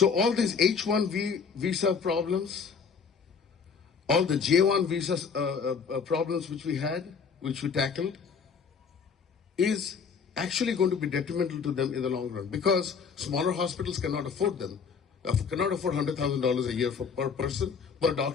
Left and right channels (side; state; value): right; quieter; 6.0 dB